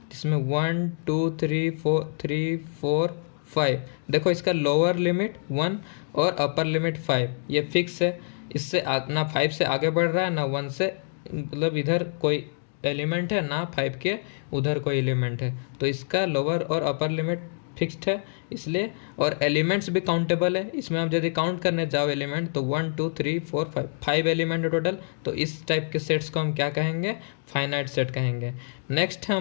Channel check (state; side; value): silent; right; digital silence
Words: जिसमें 1 2 3 4 5, देखो इसका लोअर लिमिट 1 और अपर लिमिट 5, ये फिक्स है। इससे ना 5 से आगे बढ़ रहा है ना 1 से, मतलब इधर कोई एलिमेंट है ना 5 के उधर कोई एलिमेंट है, तो इसका लोअर और अपर लिमिट फिक्स्ड है इसलिए। और एलिमेंट्स भी काउंटेबल है, इसमें आप यदि काउंट करने जाओ एलिमेंट तो 1 2 3 4 5 एलिमेंट है टोटल। तो इस टाइप के सेट्स को हम क्या कहेंगे? फाइनाइट सेट कहेंगे। नेक्स्ट है